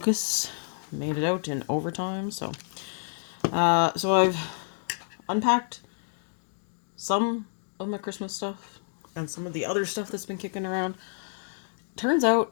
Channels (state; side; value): silent; right; digital silence